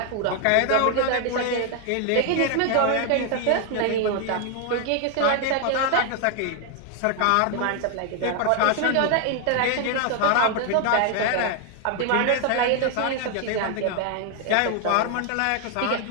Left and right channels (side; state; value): both; different; correlation 0.00